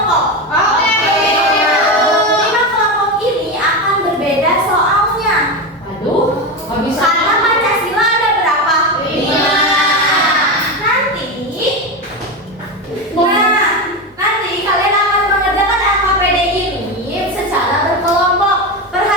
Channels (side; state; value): both; normal; correlation 0.17